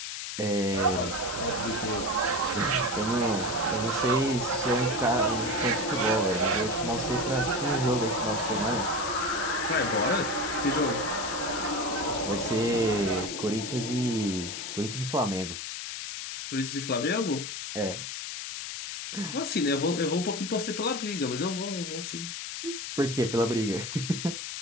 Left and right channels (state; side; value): noise; left; hiss, 6 dB below the sound